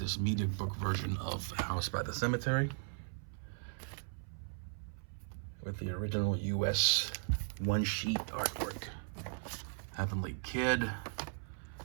media book version of House by the Cemetery with the original US one-sheet artwork. Heavenly Kid,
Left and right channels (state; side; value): silent; left; 53 dB below the other